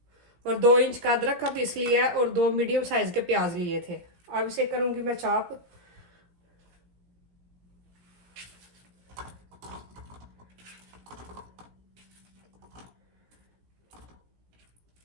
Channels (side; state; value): left; late; 17 ms